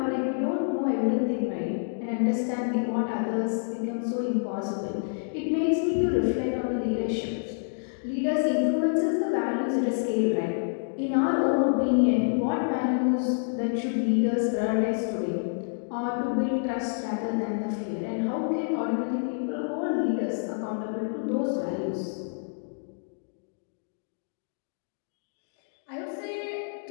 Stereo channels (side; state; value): right; silent; digital silence